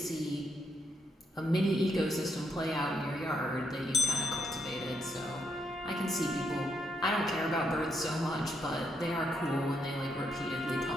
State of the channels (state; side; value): normal; both; correlation 0.78